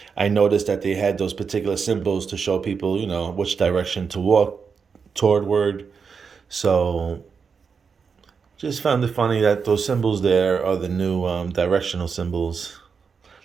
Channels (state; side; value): quieter; left; 5.8 dB